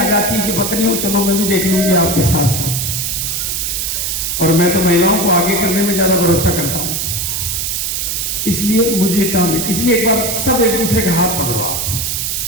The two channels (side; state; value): right; noise; hiss, 1 dB below the sound